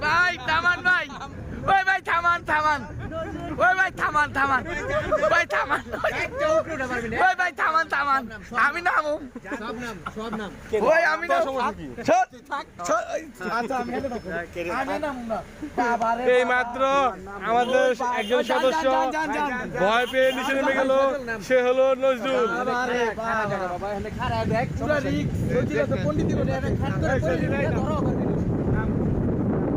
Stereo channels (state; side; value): identical; both; correlation 1.00